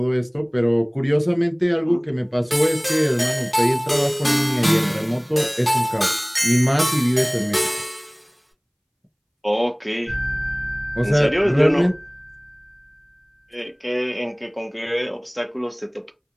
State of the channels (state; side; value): identical; both; correlation 1.00